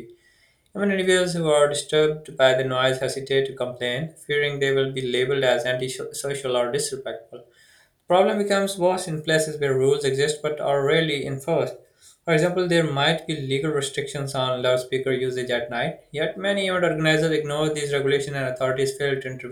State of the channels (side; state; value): both; identical; correlation 1.00